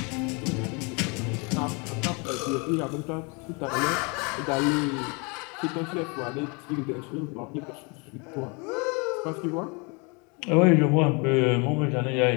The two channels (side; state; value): right; quieter; 31.2 dB